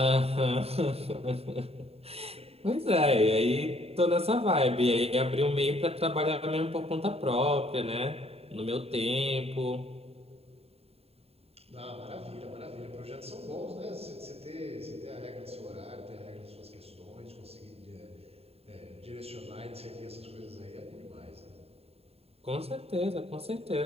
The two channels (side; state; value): left; late; 0.29 ms